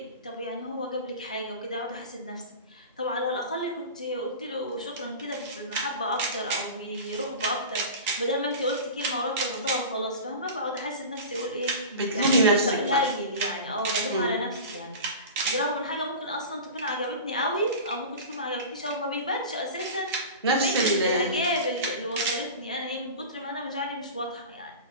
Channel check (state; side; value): inverted; both; correlation -0.32